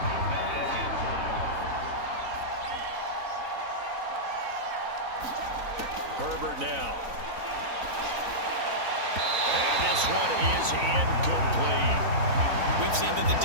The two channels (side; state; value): left; late; 4.0 ms